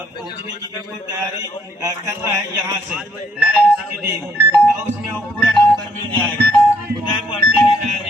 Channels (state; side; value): normal; both; correlation 0.69